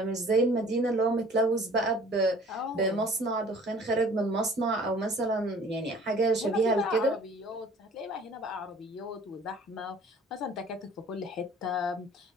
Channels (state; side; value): normal; both; correlation 0.50